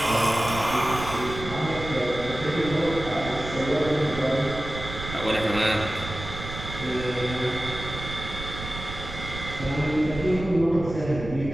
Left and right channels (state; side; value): noise; right; rumble, 9 dB below the sound